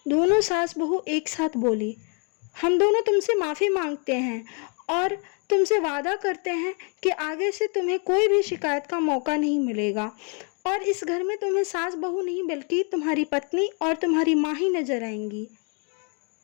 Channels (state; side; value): quieter; right; 38.7 dB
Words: दोनों सास बहू एक साथ बोली, हम दोनों तुमसे माफ़ी मांगते हैं और तुमसे वादा करते हैं कि आगे से तुम्हें कोई भी शिकायत का मौका नहीं मिलेगा, और इस घर में तुम्हें सास बहू नहीं बल्कि तुम्हारी पत्नी और तुम्हारी माँ ही नजर आएंगी।